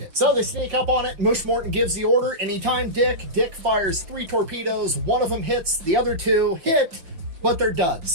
So they sneak up on it. Mush Morton gives the order. Anytime Dick fires 3 torpedoes. One of them hits, the other 2 hit, but they're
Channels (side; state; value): left; late; 5.8 ms